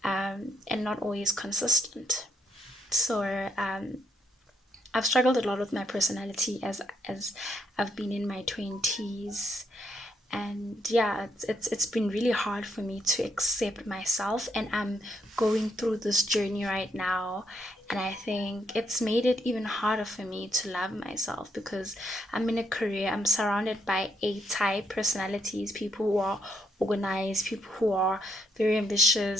and not always consistent. So I've struggled a lot with my personality as I've been in my 20s, and yeah, it's been really hard for me to accept myself, and I'm going through this journey right now. And I think it's made it even harder for me to love myself because I'm in a career, I'm surrounded by A-type personalities, people who are organized, people who are very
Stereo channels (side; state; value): both; normal; correlation 0.75